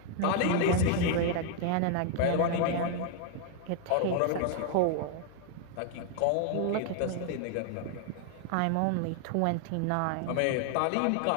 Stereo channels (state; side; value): different; both; correlation 0.00